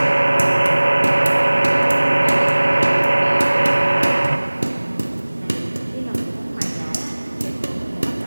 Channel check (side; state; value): both; inverted; correlation -1.00